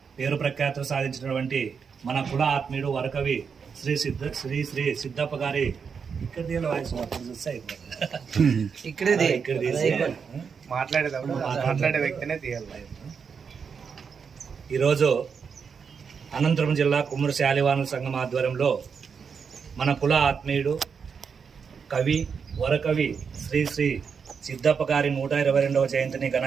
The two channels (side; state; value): left; quieter; 6.2 dB